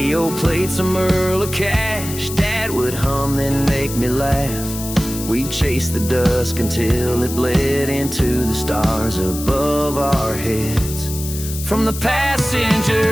played some Earl of Cash. Dad would hum, then make me laugh. We'd chase the dusk until it bled into the stars above our heads. From the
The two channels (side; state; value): left; noise; hiss, 9 dB below the sound